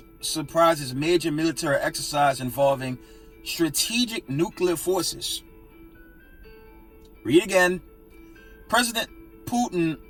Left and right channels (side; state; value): both; identical; correlation 1.00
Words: surprises major military exercise involving strategic nuclear forces. Read again. President Putin